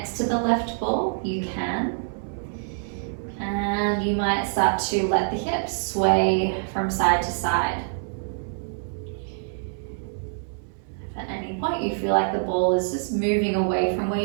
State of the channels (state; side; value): silent; left; 61 dB below the other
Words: to the left ball, you can. And you might start to let the hips sway from side to side. If at any point you feel like the ball is just moving away from where